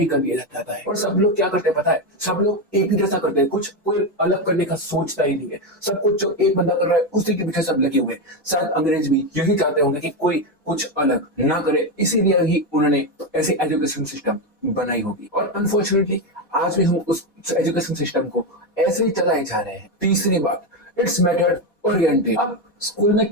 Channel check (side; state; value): both; normal; correlation 0.10